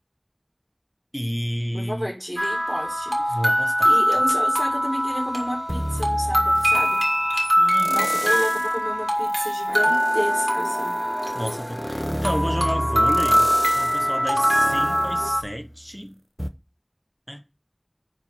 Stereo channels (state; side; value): identical; both; correlation 1.00